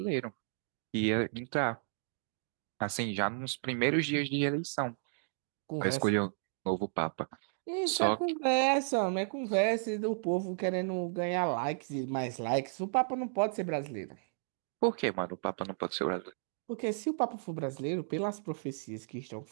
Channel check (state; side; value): silent; left; digital silence